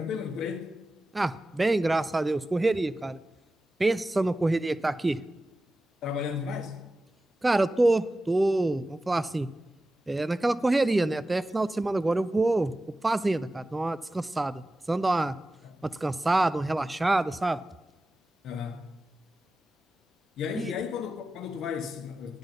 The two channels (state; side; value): normal; both; correlation 0.94